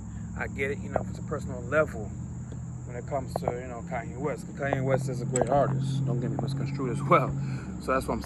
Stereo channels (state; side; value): identical; both; correlation 1.00